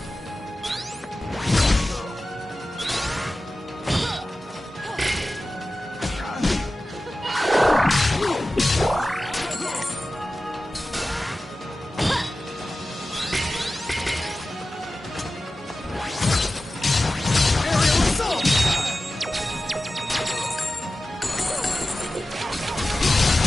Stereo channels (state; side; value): normal; both; correlation 0.95